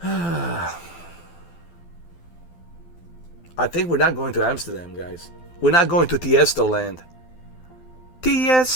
on. I think we're not going to Amsterdam, guys. We're not going to Tiesto Land.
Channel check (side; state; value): right; late; 12 ms